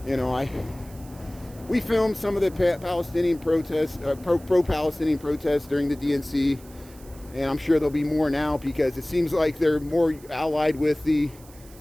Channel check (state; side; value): noise; right; hiss, 23 dB below the sound